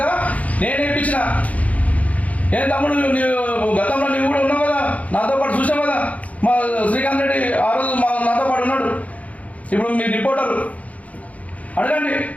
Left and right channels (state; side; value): late; right; 0.069 ms